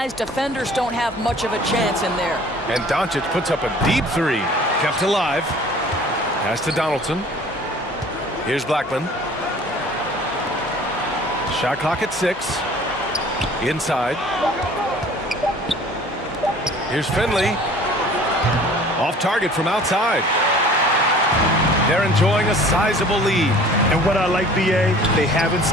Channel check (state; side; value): normal; both; correlation 0.49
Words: defenders don't have much of a chance in there. And Doncic puts up a deep 3. Kept alive. Pass to Donaldson. Here's Blackman. Shot clock at 6. Inside. Here's Finley. Off target from outside. They're enjoying a sizable lead. And what I like, B.A., they haven't